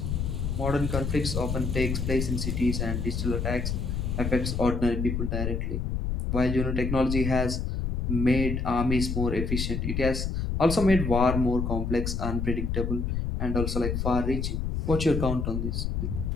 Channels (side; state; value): left; noise; rumble, 1 dB below the sound